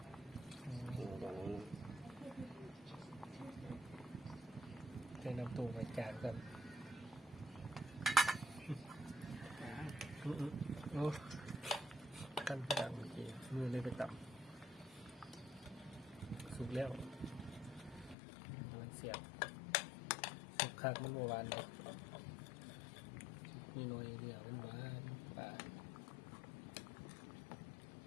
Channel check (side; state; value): right; drops out; at 18.2 s